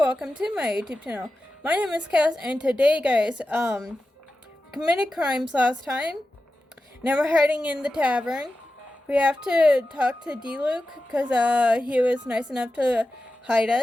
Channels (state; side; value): normal; both; correlation 0.93